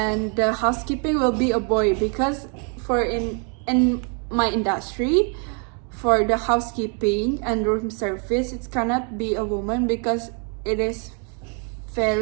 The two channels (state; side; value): quieter; left; 39.1 dB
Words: the housekeeping will be a boy, because for in my industry, for the housekeeping and room service, it cannot be a woman because it is